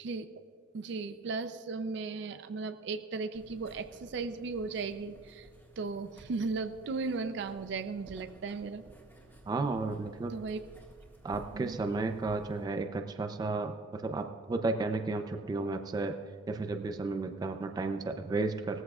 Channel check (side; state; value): left; quieter; 3.2 dB